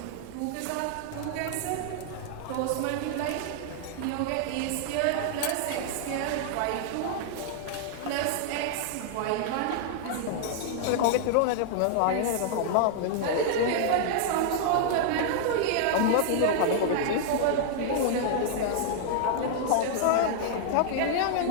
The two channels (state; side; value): different; both; correlation -0.01